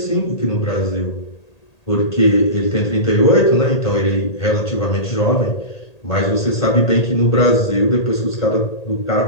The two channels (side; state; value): right; late; 1.8 ms